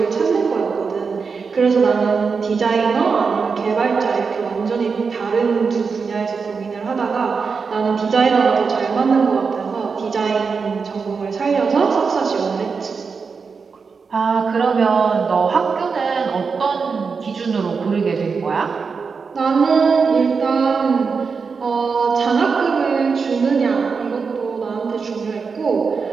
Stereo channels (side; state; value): left; quieter; 5.2 dB